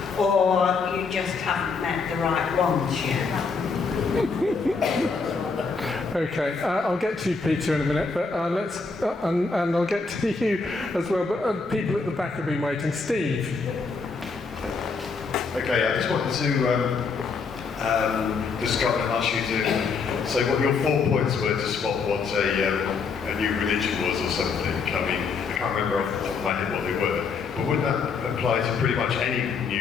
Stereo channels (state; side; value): quieter; right; 4.8 dB